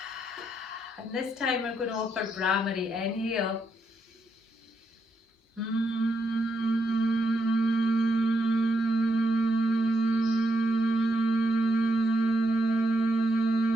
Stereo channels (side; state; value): both; normal; correlation 0.80